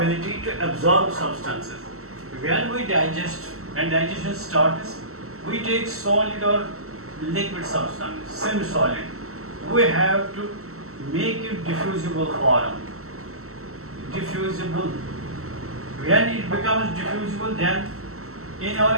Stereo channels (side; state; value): left; late; 0.63 ms